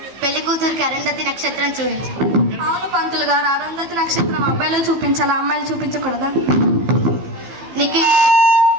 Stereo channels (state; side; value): late; left; 15 ms